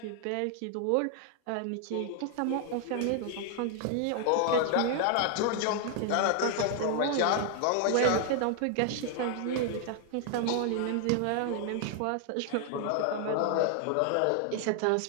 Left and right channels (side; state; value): both; different; correlation 0.00